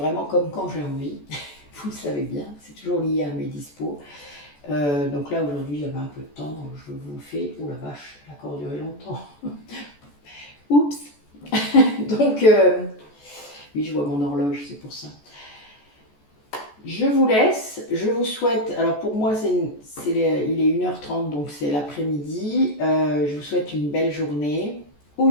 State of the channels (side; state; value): right; late; 14 ms